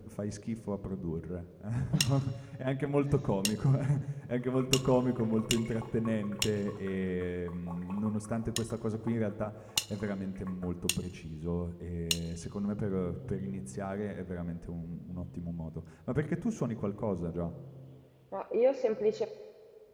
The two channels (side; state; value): both; identical; correlation 1.00